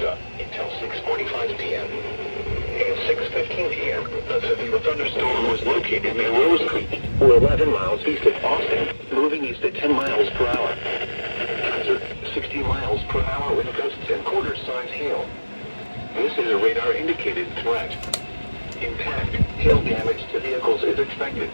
until 6:45 p.m. At 6:15 p.m., a severe thunderstorm was located near Rose Creek, 11 miles east of Austin, moving east at 10 miles per hour. Hazard, 60 miles per hour with gusts and quarter-size hail. This is a radar-indicated threat. Impact, hail damage to vehicles is expected.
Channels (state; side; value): inverted; both; correlation -1.00